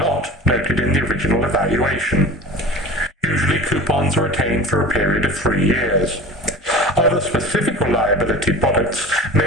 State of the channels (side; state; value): both; normal; correlation 0.38